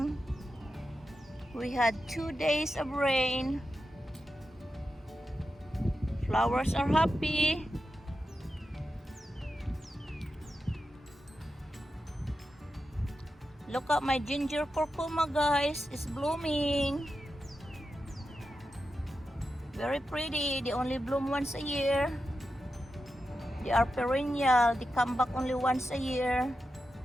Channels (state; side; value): normal; both; correlation 0.90